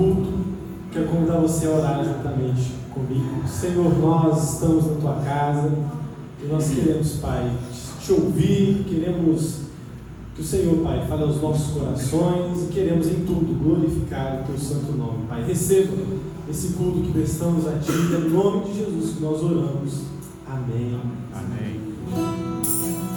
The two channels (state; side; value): identical; both; correlation 1.00